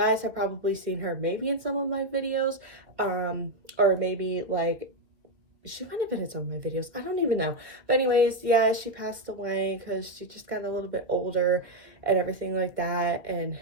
have probably seen her maybe in some of my videos, or maybe like she might have been in some of my videos. I don't even know. But anyways, yeah, she passed away because she just got a little bit older and everything like that. And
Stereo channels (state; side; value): late; left; 2.0 ms